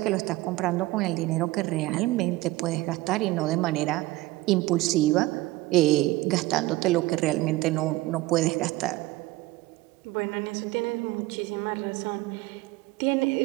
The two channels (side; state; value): left; quieter; 19.1 dB